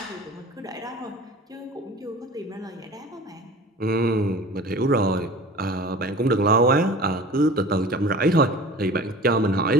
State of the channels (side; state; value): both; normal; correlation 0.40